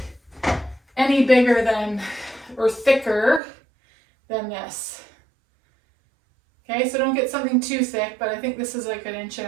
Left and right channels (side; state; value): left; drops out; at 3.4 s